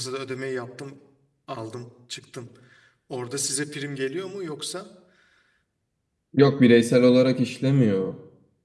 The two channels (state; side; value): identical; both; correlation 1.00